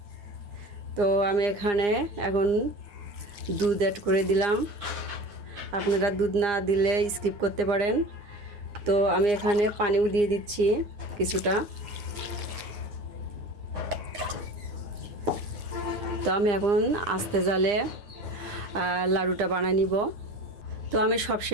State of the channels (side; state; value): left; late; 9.8 ms